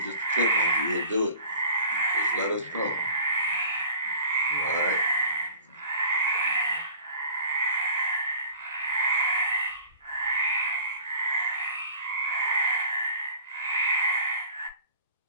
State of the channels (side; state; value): both; inverted; correlation -0.44